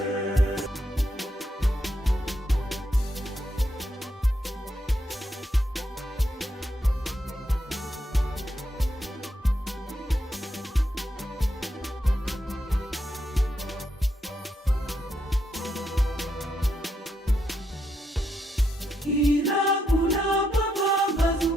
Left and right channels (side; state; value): both; normal; correlation 0.80